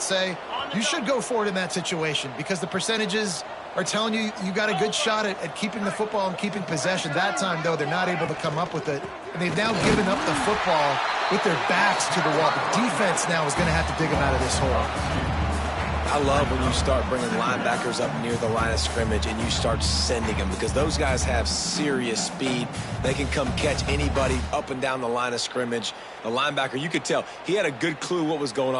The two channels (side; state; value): both; identical; correlation 1.00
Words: say you should go for it in that situation because the percentages are telling you you got a good shot at keeping the football and keeping possession. That time, though, they're not able to come up with it. And they've now given up the football with their backs to the wall. The defense now is going to have to dig them out of this hole. I love when you start bringing linebackers up near the line of scrimmage and you start sending them because those guys have serious speed. They can come catch anybody up and down the line of scrimmage. The linebacker, you could tell, he had a good clue what was going